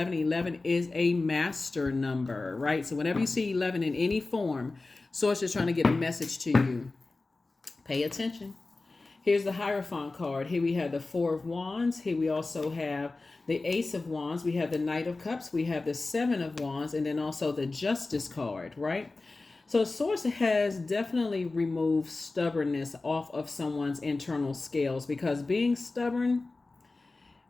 11 is a master number, right? So whenever you see 11 in any form, Source is trying to get a message to you. Pay attention. Here's the Hierophant card. Here we have the 4 of Wands. Here we also have the Ace of Wands. We have the Knight of Cups. We have the 7 of Wands. And then also the Justice card, right? So Source has definitely removed stubbornness off of someone's internal scales, because being stubborn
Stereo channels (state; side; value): quieter; right; 3.4 dB